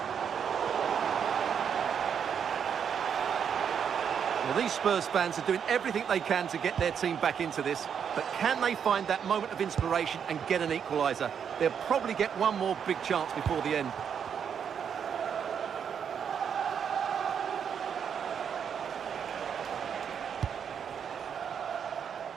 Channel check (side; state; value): left; quieter; 7.6 dB